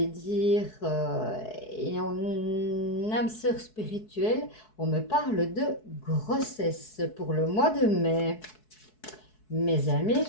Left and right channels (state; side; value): late; right; 4.7 ms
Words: dire, et en âme sœur spirituelle, on me parle de grossesse pour le mois de mai. Mes amis